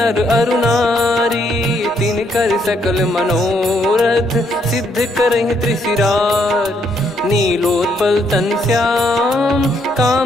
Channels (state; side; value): normal; both; correlation 0.72